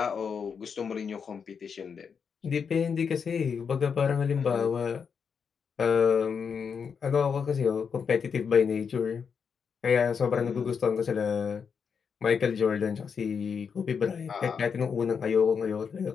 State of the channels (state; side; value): quieter; right; 6.4 dB